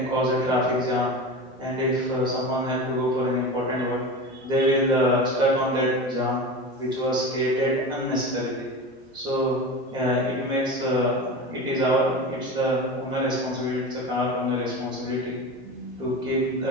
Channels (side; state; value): both; normal; correlation 0.28